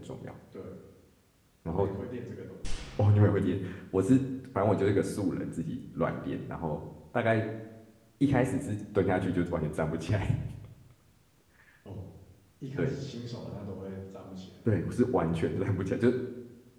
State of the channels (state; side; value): identical; both; correlation 1.00